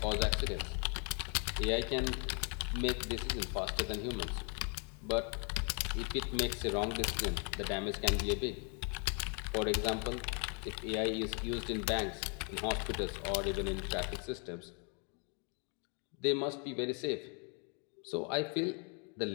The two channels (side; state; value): right; quieter; 38.4 dB